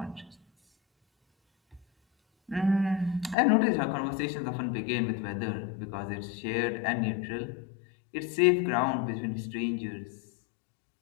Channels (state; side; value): drops out; right; at 3.4 s